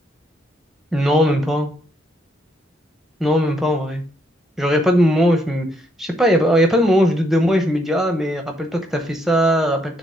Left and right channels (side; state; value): both; normal; correlation 0.73